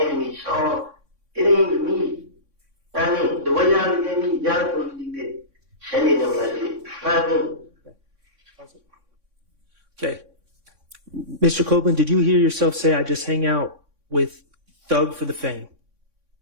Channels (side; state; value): left; late; 3.6 ms